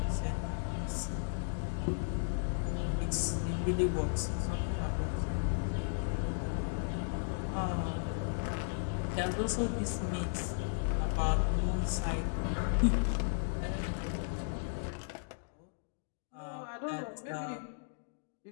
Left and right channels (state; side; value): silent; right; digital silence